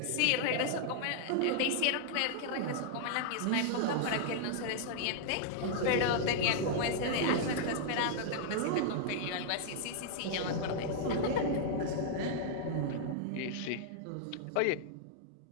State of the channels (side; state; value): both; different; correlation -0.01